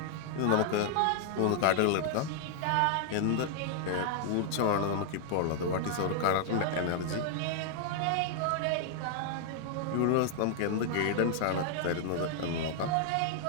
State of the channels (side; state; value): both; different; correlation 0.00